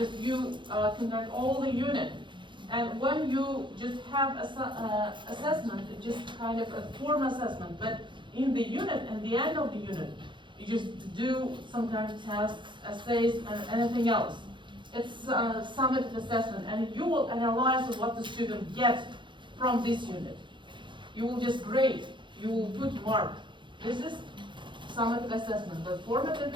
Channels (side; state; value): left; late; 0.23 ms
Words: you conduct all the unit. And when you just have assessment, it's just kind of a form assessment. But in the unit, at the end of the unit, you just do some kind of tests, essays, and anything else. It's summative assessment, and you will analyze what the student gets from this unit. You will just grade. You will put mark. This is summative assessment. But formative